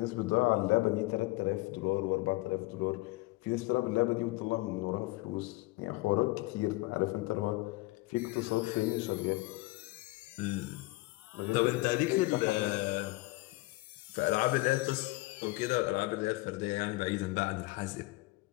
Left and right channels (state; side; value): quieter; right; 21.5 dB